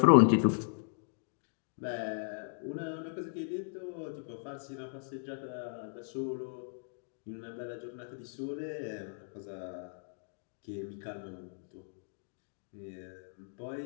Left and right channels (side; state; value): right; silent; digital silence